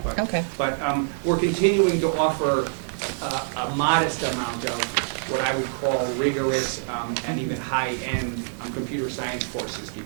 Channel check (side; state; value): left; silent; 62 dB below the other